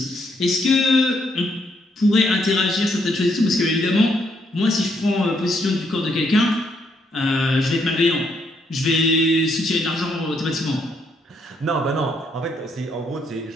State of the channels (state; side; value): normal; both; correlation 0.74